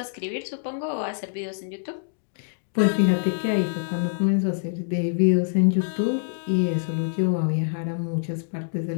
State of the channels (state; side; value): silent; right; digital silence